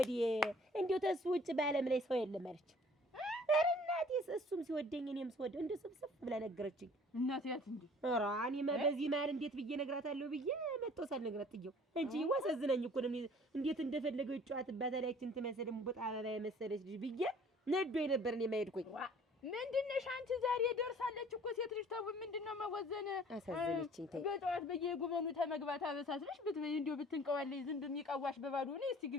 እንደው ተሱ ውጭ በዓለም ላይ ሰው የለም አለች። ኧረ እናቴስ እሱም ሲወደኝ እኔም ስወደው እንደው ስብስብ ብላ ነገረችኝ። እናቴ ያት እንዴ ኧረ እኔማ በዚህ መሀል እንዴት ብዬ እነግራታለሁ ብዬ መጥቶ ሳልነግራት ጥየው እንጂ ዋሰዝነኝ እኮ ነው። እንዴት እንደፈለገው ይጫወትባታል ያችን ትመስል እምቡጥ አበባ የመሰለች ልጅ ብዬ ነዶኝ ነበር እኔ የማይሄድኩኝ። ምንድነሽ አንቺ ዛሬ ደርሳለች እኮ ሴት ልጅ ተው ምንድነው መወዘን? አሳዘነችኝ። ተይ በጠዋት በየጉበኑ ተመግባት አበሳስልሽ ብትበይ እንደው ብትንቀዋለይ ዝም በሚቀዋሽ በባዶ ነው። እስቲ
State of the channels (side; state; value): both; normal; correlation 0.52